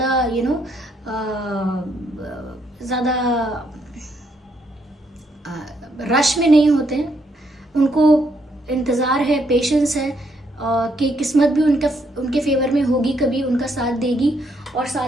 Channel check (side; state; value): both; normal; correlation 0.74